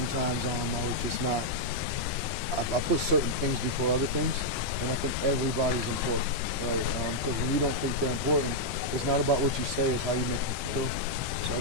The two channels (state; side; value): normal; both; correlation -0.05